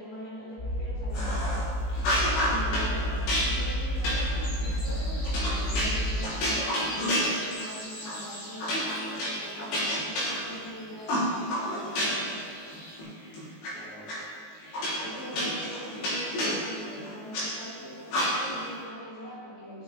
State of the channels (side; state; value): right; late; 19 ms